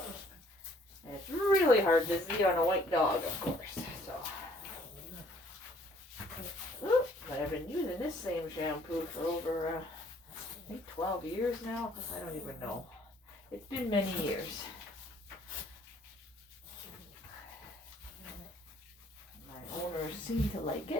And it's really hard to see on a white dog, of course. So, but I've been using this same shampoo for over, I think 12 years now. I don't even know. It's been many years. My owners seem to like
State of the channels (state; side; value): normal; both; correlation 0.60